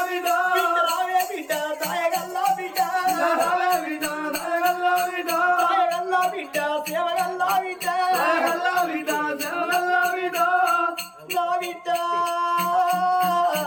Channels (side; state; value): both; identical; correlation 1.00